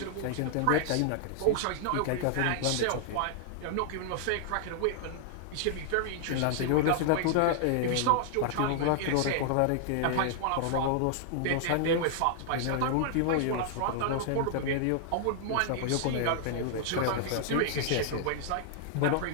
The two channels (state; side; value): different; both; correlation -0.01